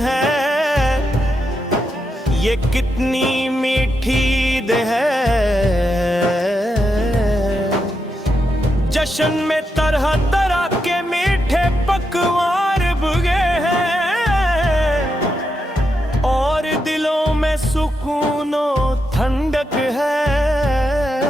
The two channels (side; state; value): both; normal; correlation 0.84